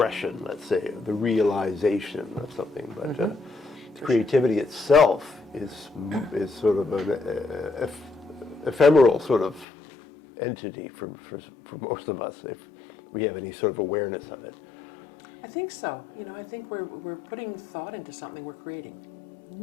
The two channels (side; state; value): right; drops out; at 9.7 s